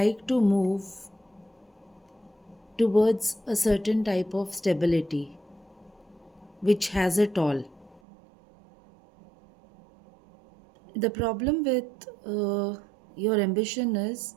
to move towards a certain type of stability which has it all. The problem with your ambition is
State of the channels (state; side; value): drops out; left; at 8.0 s